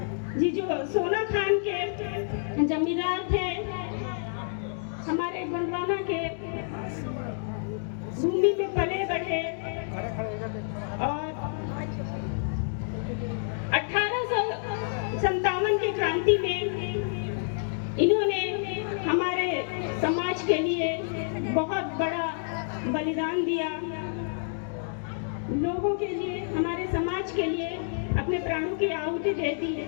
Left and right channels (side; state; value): right; silent; digital silence